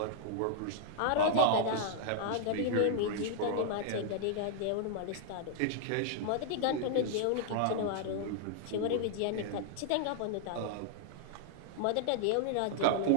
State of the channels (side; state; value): both; different; correlation -0.01